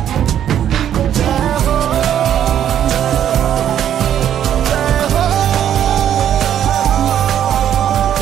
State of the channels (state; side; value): quieter; left; 10.2 dB